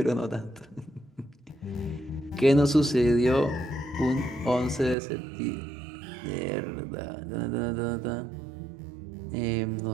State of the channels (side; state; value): left; drops out; at 5.0 s